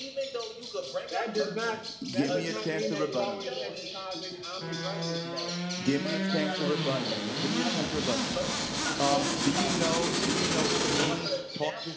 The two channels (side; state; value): both; identical; correlation 1.00